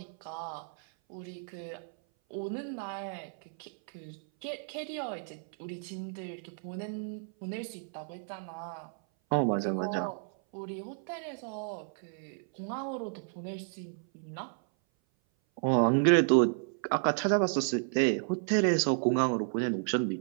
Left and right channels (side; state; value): left; silent; 56 dB below the other